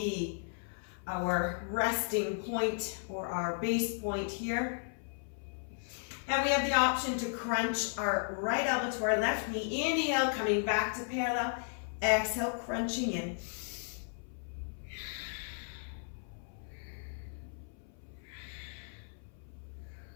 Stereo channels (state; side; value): silent; right; 54 dB below the other